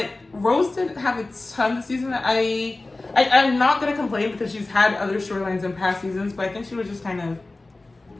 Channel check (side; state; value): right; quieter; 3.1 dB